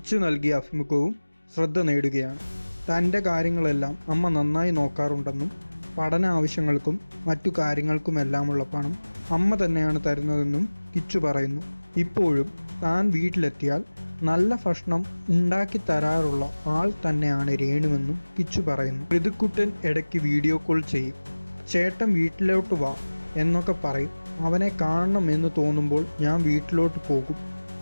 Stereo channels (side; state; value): both; inverted; correlation -1.00